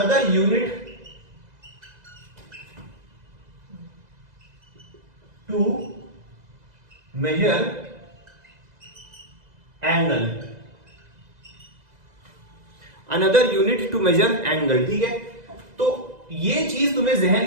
unit to measure angle, another unit to measure angle, ठीक है। तो ये चीज तुम्हें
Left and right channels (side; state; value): left; late; 2.0 ms